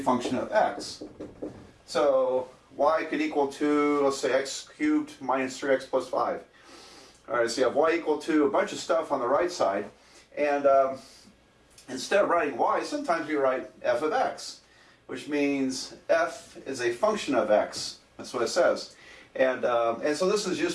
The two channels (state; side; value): identical; both; correlation 1.00